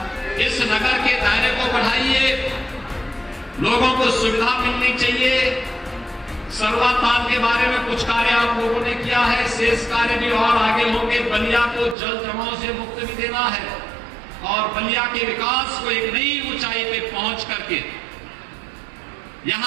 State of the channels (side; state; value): left; drops out; at 12.0 s